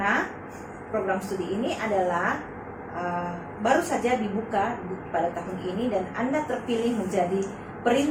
program studi ini adalah baru saja dibuka pada tahun ini, dan Anda terpilih menjadi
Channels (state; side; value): identical; both; correlation 1.00